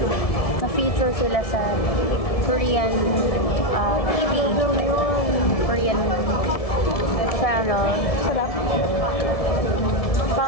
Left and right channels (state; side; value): late; right; 1.7 ms